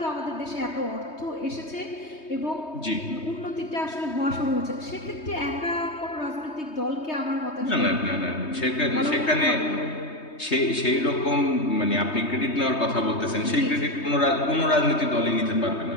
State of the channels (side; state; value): right; late; 3.2 ms